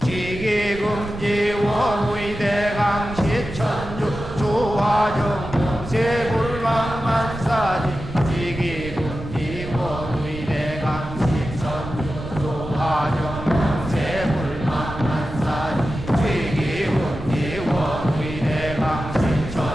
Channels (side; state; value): right; noise; rumble, 11 dB below the sound